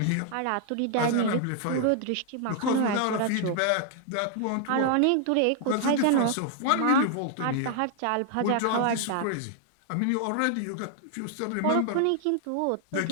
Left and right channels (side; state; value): both; different; correlation 0.00